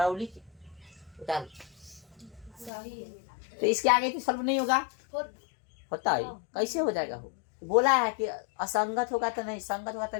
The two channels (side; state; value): right; drops out; at 2.7 s